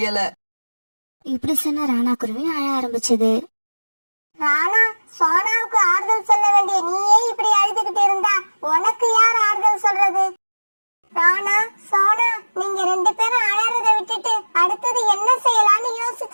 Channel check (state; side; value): inverted; both; correlation -1.00